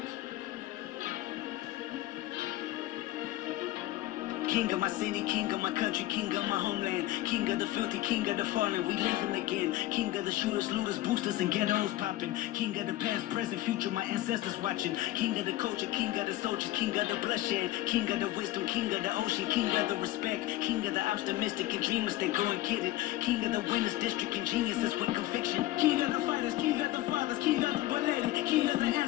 King of my city, king of my country, king of my homeland. King of the filthy, king of the fallen, we living again. King of the shooters, looters, boosters, and ghettos popping. King of the past, present, future, my ancestors watching. King of the culture, king of the soldiers, king of the bloodshed. King of the wisdom, king of the ocean, king of the respect. King of the optimistic and dreamers, they go and get it. King of the winners, district, and geniuses with conviction. King of the fighters, king of the fathers, king of the belated. King of the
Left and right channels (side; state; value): right; quieter; 16.2 dB